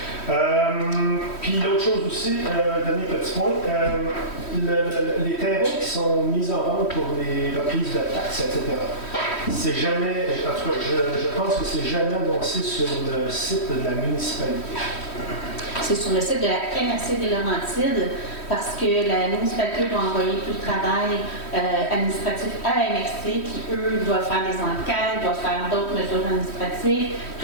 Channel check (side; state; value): right; late; 3.1 ms